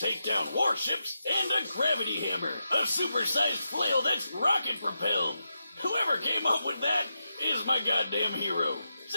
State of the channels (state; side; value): inverted; both; correlation -0.87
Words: down warships, and a gravity hammer, a supersized flail that's rocket-propelled. Whoever came up with that is my goddamn hero.